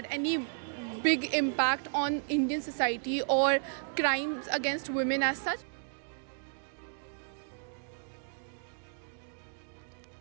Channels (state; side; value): silent; left; digital silence